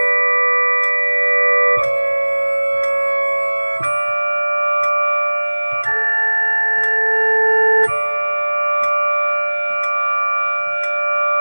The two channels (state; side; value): inverted; both; correlation -1.00